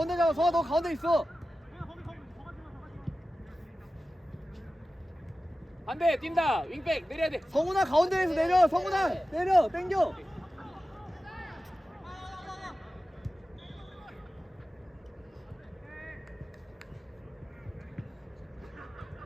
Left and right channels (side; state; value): both; normal; correlation 0.94